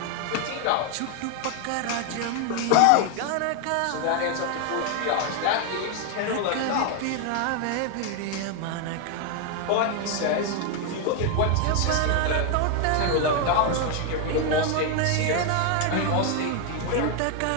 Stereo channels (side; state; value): both; different; correlation 0.00